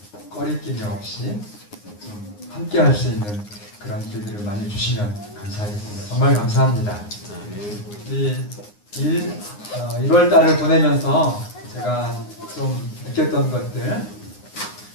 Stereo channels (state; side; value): late; right; 9.7 ms